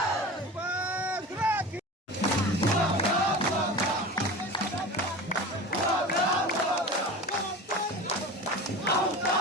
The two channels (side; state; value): both; normal; correlation 0.33